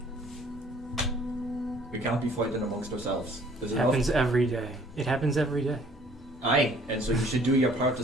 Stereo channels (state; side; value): normal; both; correlation 0.57